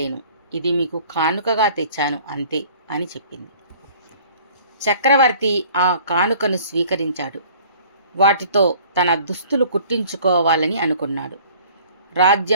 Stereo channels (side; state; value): both; inverted; correlation -0.51